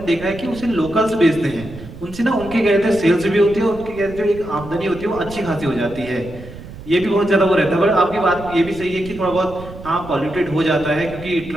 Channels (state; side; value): noise; right; rumble, 15 dB below the sound